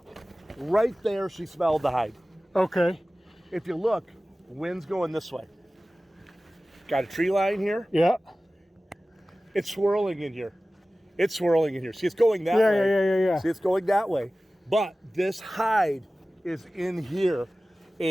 Right there, she smelled the hide. Okay. If you look, the wind's going this way. Got a tree line here. Yeah. It's swirling in here. It's swirling in here. See, it's going that way. Yeah. See, it's going that way. But this hide is in here.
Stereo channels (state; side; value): normal; both; correlation 0.97